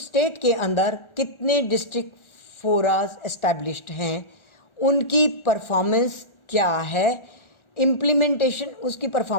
स्टेट के अंदर कितने डिस्ट्रिक्ट फोरास एस्टैब्लिश्ड हैं, उनकी परफॉर्मेंस क्या है, इम्प्लीमेंटेशन उसकी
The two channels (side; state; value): right; late; 1.4 ms